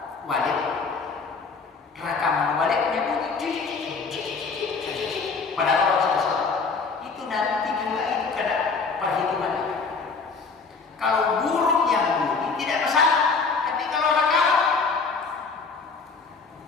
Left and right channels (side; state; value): right; quieter; 4.7 dB